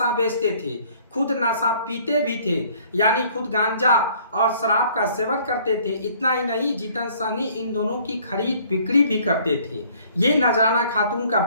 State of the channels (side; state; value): both; inverted; correlation -0.58